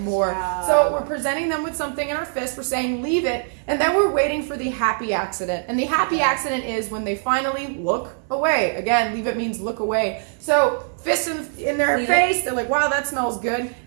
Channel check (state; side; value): silent; left; 60 dB below the other